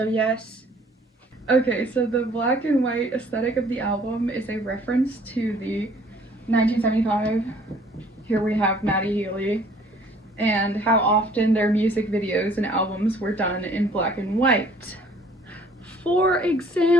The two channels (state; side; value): normal; both; correlation 0.57